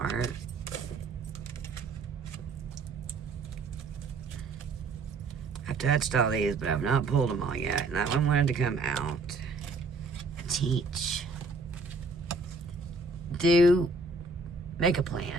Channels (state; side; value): quieter; left; 3.6 dB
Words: I've touched all these, but I've not pulled them all yet. And that one wanted to come out. Teach. Do. Make a